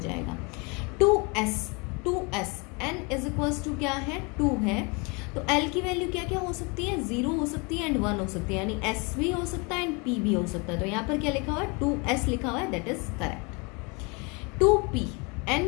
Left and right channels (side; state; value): right; quieter; 30.3 dB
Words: 2s n is equals to क्या है, 2 है, तो l की वैल्यू क्या क्या हो सकती है, 0 हो सकती है एंड 1 हो सकती है, यानी s भी हो सकता है एंड p भी हो सकता है। तो यहाँ पर क्या लिखा हुआ है, 2s लिखा हुआ है, that is correct. 2p